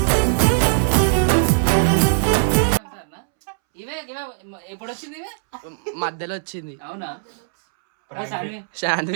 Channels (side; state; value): left; silent; 65 dB below the other